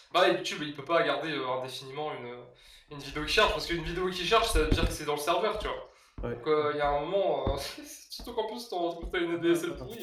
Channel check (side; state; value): both; identical; correlation 1.00